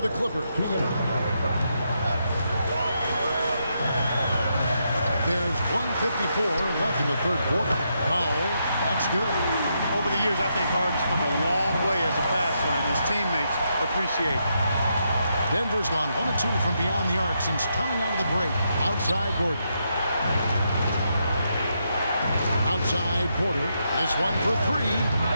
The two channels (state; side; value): inverted; both; correlation -0.81